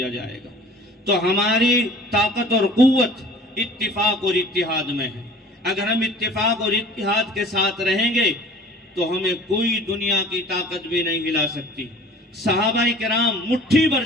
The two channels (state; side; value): normal; both; correlation 0.47